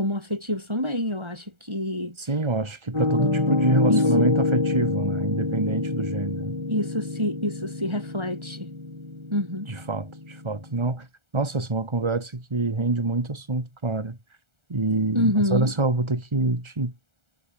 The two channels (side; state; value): left; late; 1.3 ms